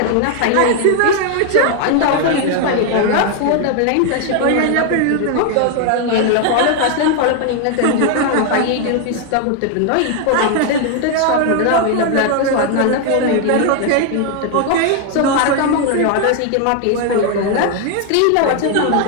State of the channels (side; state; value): both; different; correlation 0.00